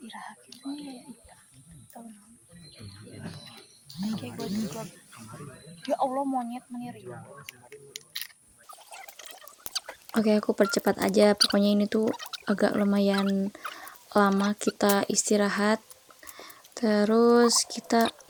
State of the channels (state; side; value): identical; both; correlation 1.00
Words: iraha gitu ya Allah, monyet meniri. Oke, aku percepat aja. Pokoknya ini tuh agak lumayan lama kita istirahat. Terus kita